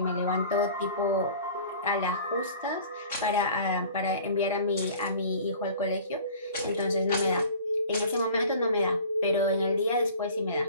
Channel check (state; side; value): inverted; both; correlation -0.46